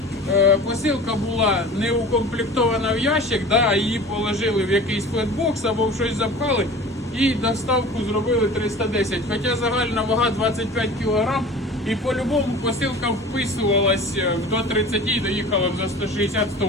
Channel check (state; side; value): normal; both; correlation 0.39